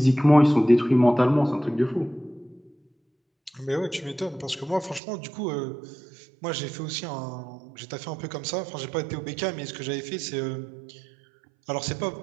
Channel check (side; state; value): left; drops out; at 5.0 s